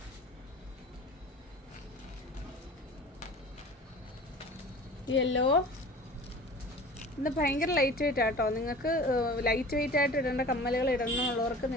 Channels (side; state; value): both; normal; correlation 0.40